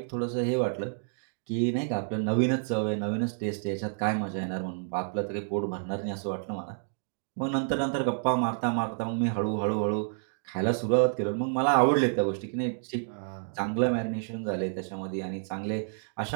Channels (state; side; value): silent; left; digital silence